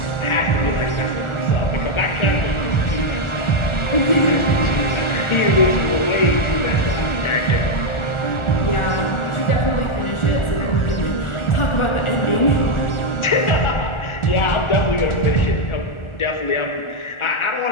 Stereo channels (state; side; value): late; right; 1.4 ms